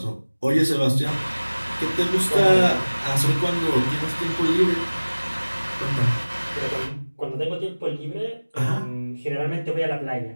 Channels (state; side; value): inverted; both; correlation -1.00